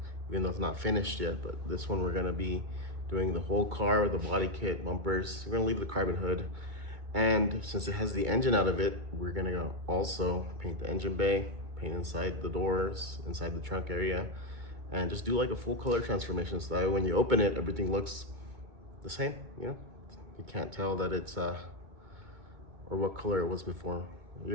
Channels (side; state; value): left; late; 2.2 ms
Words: even though it's not finished yet, but this one we're gonna be doing the whole car, the body kit, bumpers. We're gonna leave the carbon hood, and since it has the engine out of it, we're gonna also paint the engine bay, paint inside the doors, inside the trunk area, and just do like a full color transformation so that way when you open it, everything looks the same. You can't tell that it's or what color it was before.